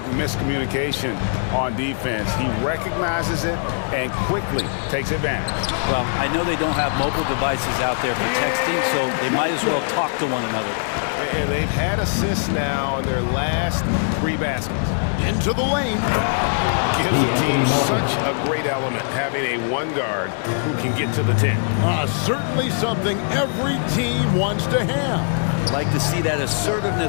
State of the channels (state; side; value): silent; right; 65 dB below the other